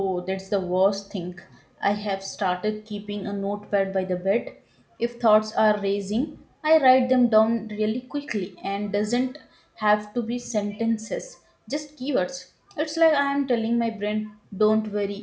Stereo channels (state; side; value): identical; both; correlation 1.00